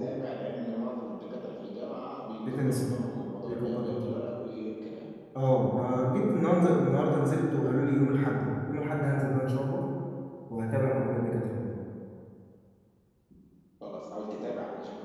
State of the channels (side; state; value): both; identical; correlation 1.00